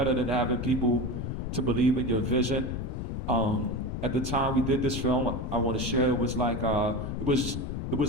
than having people to believe in your vision. At the time we did this film, I want to share, it was like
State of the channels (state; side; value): noise; left; rumble, 4 dB below the sound